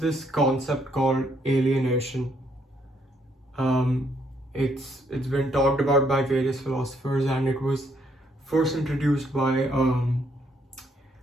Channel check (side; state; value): both; normal; correlation 0.71